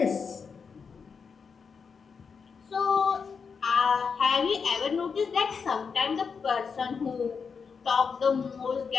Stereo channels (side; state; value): right; quieter; 5.8 dB